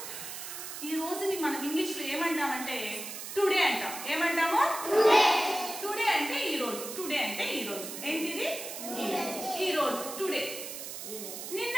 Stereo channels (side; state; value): right; noise; hiss, 8 dB below the sound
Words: రోజుని మనం ఇంగ్లీష్ లో ఏమంటామంటే టుడే అంటాం. ఏమంటాము? టుడే అంటే ఈ రోజు. టుడే అంటే ఈ రోజు. ఏంటిది? ఈ రోజు. టుడే. నిన్న